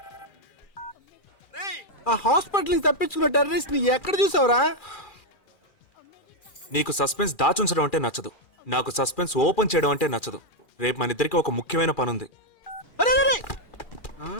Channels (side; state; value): right; late; 2.4 ms